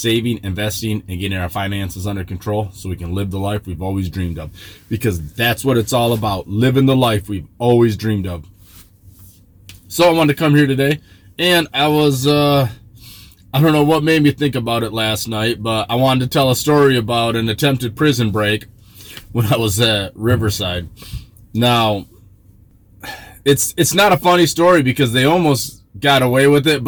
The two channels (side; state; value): both; identical; correlation 1.00